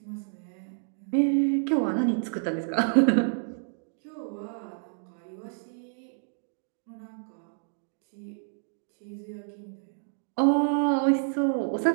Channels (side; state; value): left; silent; digital silence